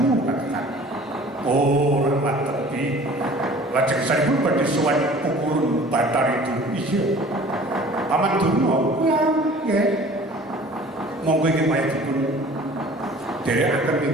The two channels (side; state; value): both; normal; correlation 0.47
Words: katakan. Oh, lemah tepi. Lajeng saripun badhe sowan pukulun batar itu. Iya. Paman Durna. Ya, nggih. Monggo ingin maya dipun dherekaken